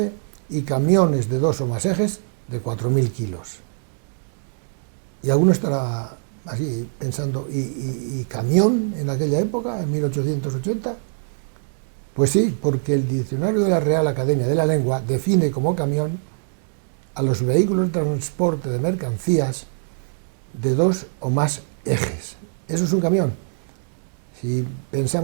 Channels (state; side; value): silent; left; digital silence